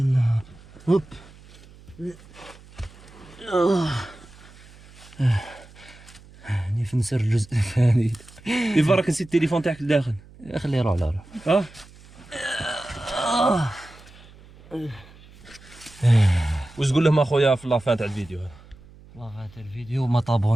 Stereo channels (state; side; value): noise; right; hum, 23 dB below the sound